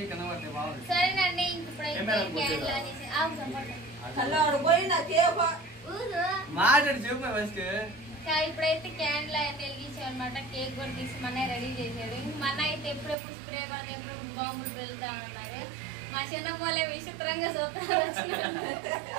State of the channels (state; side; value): drops out; left; at 13.2 s